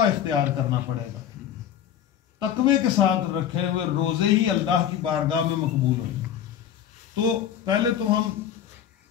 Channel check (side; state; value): right; quieter; 9.7 dB